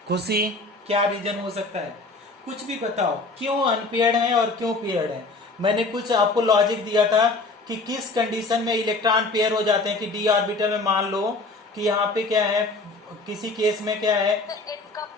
खुशी क्या रीजन हो सकता है? कुछ भी बताओ, क्यों अनपेयर्ड है और क्यों पेयर्ड है? मैंने कुछ आपको लॉजिक दिया था कि किस कंडीशन में इलेक्ट्रॉन पेयर हो जाते हैं, कि डी ऑर्बिटल में मान लो कि यहाँ पे क्या है, किसी केस में क्या है,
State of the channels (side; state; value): right; quieter; 3.4 dB